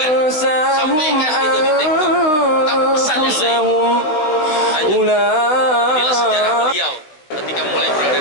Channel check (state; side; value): late; right; 16 ms